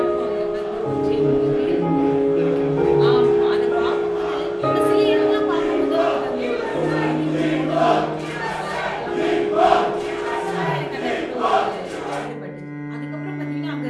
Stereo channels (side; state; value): both; identical; correlation 1.00